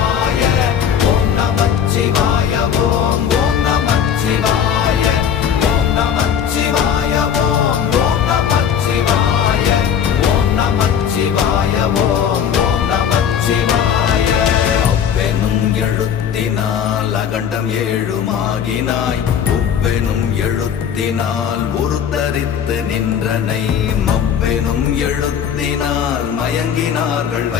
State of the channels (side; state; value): right; quieter; 8.3 dB